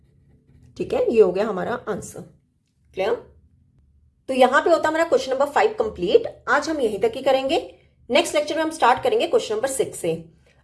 ठीक है, ये हो गया हमारा आंसर। क्लियर। तो यहां पे होता हमारा क्वेश्चन नंबर 5 कंप्लीट। आज हम यहीं तक ही करेंगे। नेक्स्ट लेक्चर में हम स्टार्ट करेंगे क्वेश्चन नंबर 6 से।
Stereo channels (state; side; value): identical; both; correlation 1.00